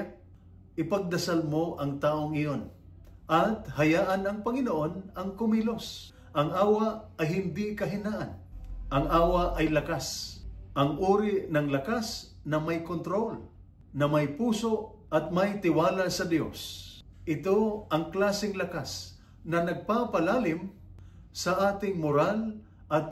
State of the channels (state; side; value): identical; both; correlation 1.00